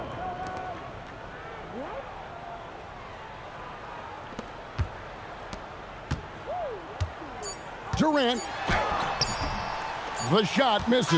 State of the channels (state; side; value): identical; both; correlation 1.00